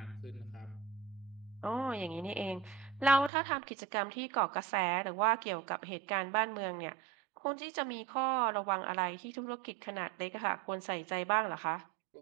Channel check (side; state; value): left; drops out; at 3.3 s